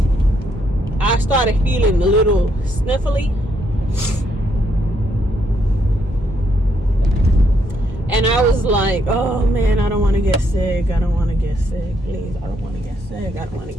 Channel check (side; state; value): both; normal; correlation 0.74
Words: I started feeling a little sniffly, and I was like, oh man, I don't want to get sick. I don't want to get sick. Please, I don't want to get sick. I don't want to